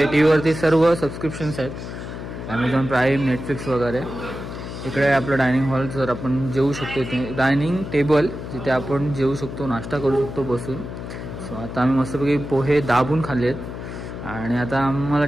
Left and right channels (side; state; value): left; noise; hum, 9 dB below the sound